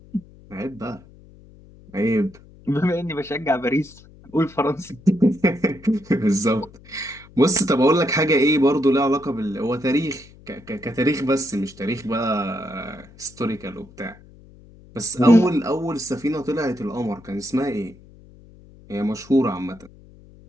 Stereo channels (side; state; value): left; noise; hum, 23 dB below the sound